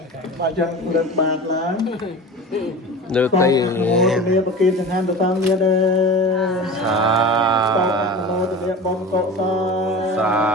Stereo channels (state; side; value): normal; both; correlation 0.34